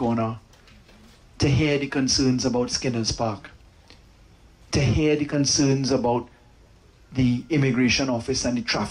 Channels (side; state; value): both; identical; correlation 1.00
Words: to hear the concerns about Skinner's Park, to hear the concerns about the immigration office and the